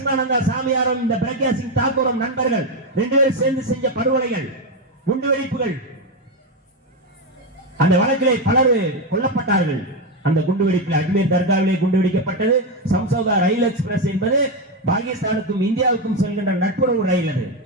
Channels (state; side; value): normal; both; correlation 0.09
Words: சாமியாரும் இந்த பிரக்யா சிங் தாக்கூரும் நண்பர்கள். 2 பேரும் சேர்ந்து செஞ்ச படுகொலைகள், குண்டுவெடிப்புகள். அந்த வழக்கிலே பலர் கொல்லப்பட்டார்கள். அந்த குண்டுவெடிப்பில் அஜ்மீர் தர்காவிலே குண்டுவெடிக்கப்பட்டது. சம்சௌதா ரயில் எக்ஸ்பிரஸ் என்பது பாகிஸ்தானுக்கும் இந்தியாவுக்கும் செல்கின்ற நட்புறவு ரயில். அது